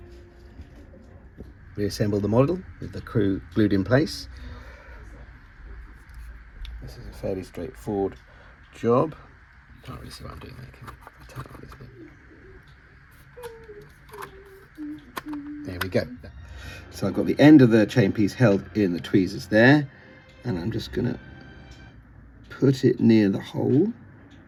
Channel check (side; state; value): both; identical; correlation 1.00